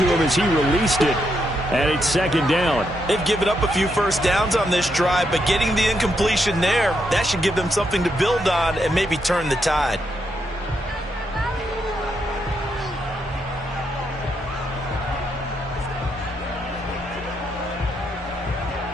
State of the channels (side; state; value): both; normal; correlation 0.79